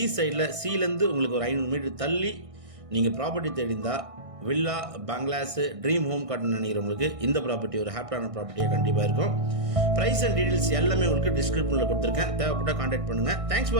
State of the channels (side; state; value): left; late; 1.6 ms